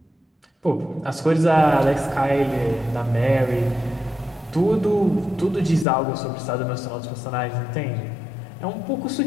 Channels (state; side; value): drops out; right; at 5.9 s